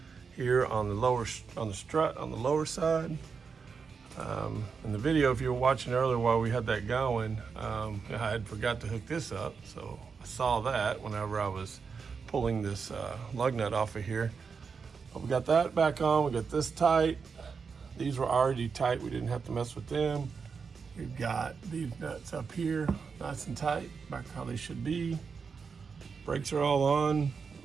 Here on the strut on the lower side. In the video, if you were watching earlier while we had that going, I had forgot to hook this up, so I saw that whenever I was pulling this lug nut off of here. But we got that back on, we got this tight. These were already tight, we didn't have to mess with them. We've got these nuts up here, nice and tight, back how they should be. Brakes are all on.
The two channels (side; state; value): left; quieter; 5.6 dB